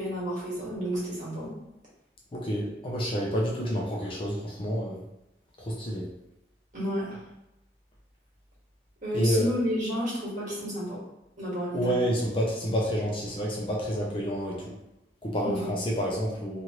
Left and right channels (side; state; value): both; normal; correlation 0.63